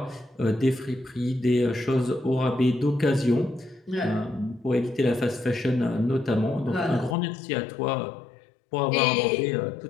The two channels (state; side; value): drops out; right; at 7.2 s